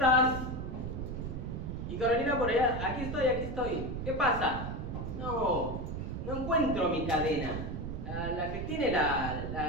Y Carolina por allá, aquí estoy. ¿Qué pasa? No encuentro mi cadena. La que tiene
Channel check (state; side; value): noise; right; rumble, 5 dB below the sound